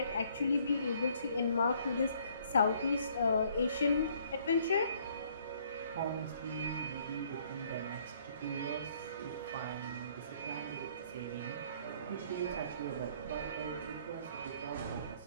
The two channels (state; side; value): inverted; both; correlation -0.63